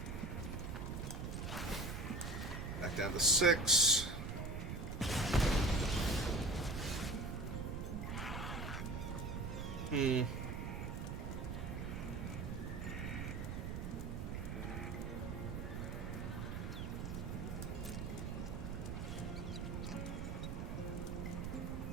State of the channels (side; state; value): right; noise; rumble, 4 dB below the sound